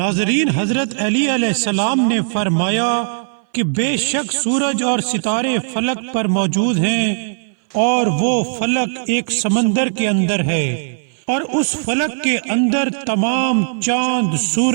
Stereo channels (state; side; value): silent; left; 60 dB below the other